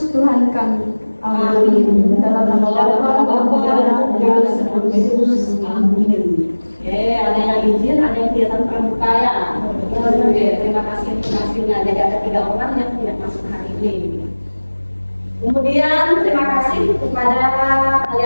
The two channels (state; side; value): inverted; both; correlation -1.00